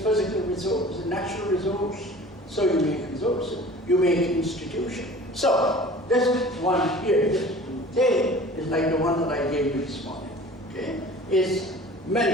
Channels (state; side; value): normal; both; correlation 0.43